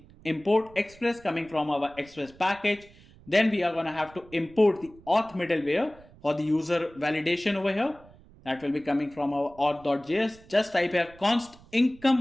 import express coming from our express package. Then we are going to have to import the auth middleware for the user validation over here. That will be coming from our auth.js. Just type here const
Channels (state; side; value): noise; right; rumble, 24 dB below the sound